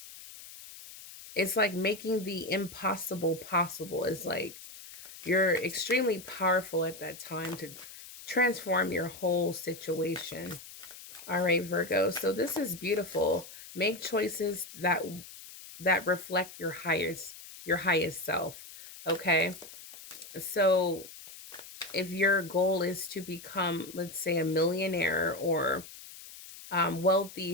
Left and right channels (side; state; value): left; noise; hiss, 15 dB below the sound